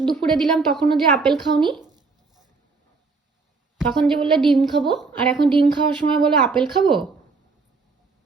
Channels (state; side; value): quieter; left; 4.3 dB